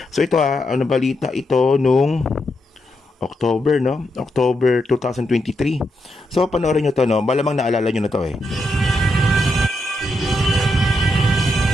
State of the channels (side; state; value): both; normal; correlation 0.82